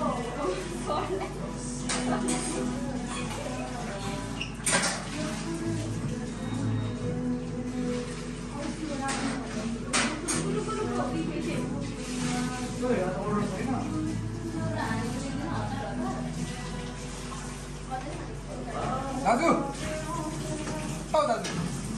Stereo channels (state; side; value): identical; both; correlation 1.00